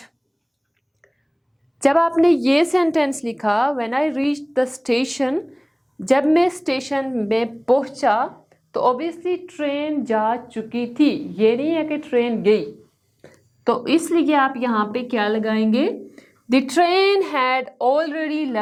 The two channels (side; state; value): both; identical; correlation 1.00